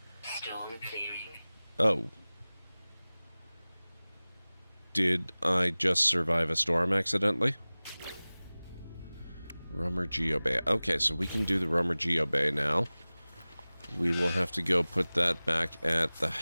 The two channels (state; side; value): inverted; both; correlation -0.99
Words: Storm clearing. Oh. Did I just survive a storm accidentally? Rumor Geobay. Okay, so we can do the Rumor Geobay now. We will have to go put that back at the